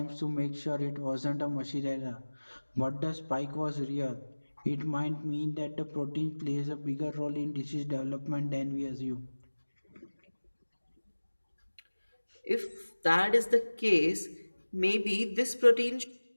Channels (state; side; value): inverted; both; correlation -1.00